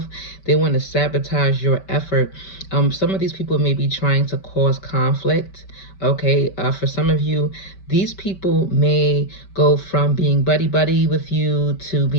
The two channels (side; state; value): right; late; 5.2 ms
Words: They want to sabotage your effort. Some of these people may be trying to cause conflict. Okay, for some of you, these people may go from being buddy buddy with you to